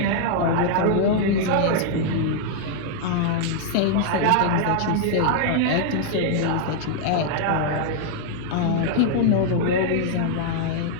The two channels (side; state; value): both; different; correlation -0.01